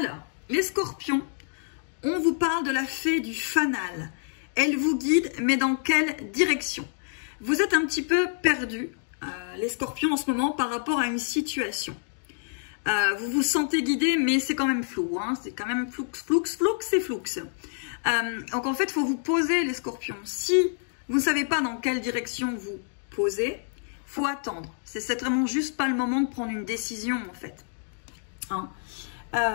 les scorpions, on vous parle de la fée du fanal. Elle vous guide, mais dans quelle direction? Vous êtes un petit peu perdu, les scorpions, en ce moment, par rapport à une situation. Vous vous sentez guidé, mais c'est quand même flou. Hein, c'est quand même floux, c'est flou. Donc, en fait, il faut vous poser, les scorpions. Si vous ne savez pas dans quelle direction vous posez, il faut attendre. C'est vraiment juste pas le moment de prendre une décision, en fait. Hein.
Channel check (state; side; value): silent; right; digital silence